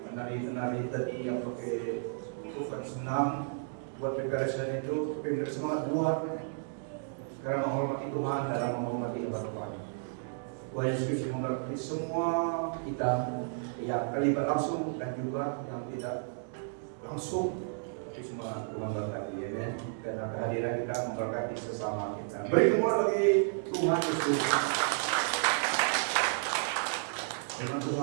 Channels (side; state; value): left; silent; digital silence